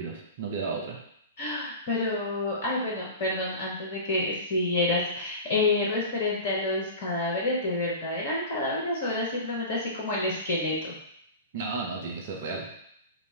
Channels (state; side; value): inverted; both; correlation -0.32